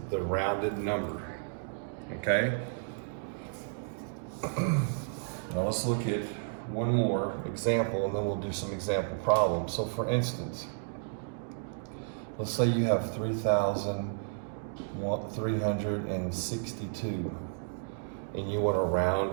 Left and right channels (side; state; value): left; silent; digital silence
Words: the rounded number. Okay? Now let's look at one more example, and then we'll do some example problems. So for instance, let's say you have 3,362. and you want to round